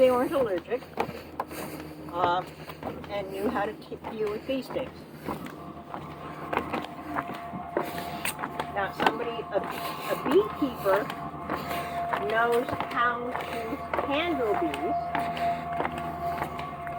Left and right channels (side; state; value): both; identical; correlation 1.00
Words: weren't allergic and knew how to deal with bee stings. Now, a beekeeper knows how to handle bees